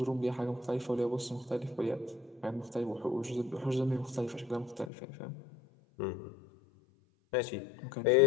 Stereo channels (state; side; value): drops out; right; at 4.9 s